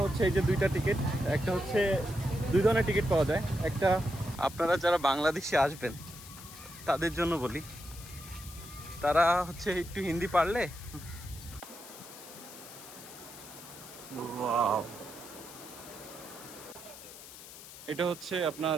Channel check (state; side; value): noise; left; hiss, 15 dB below the sound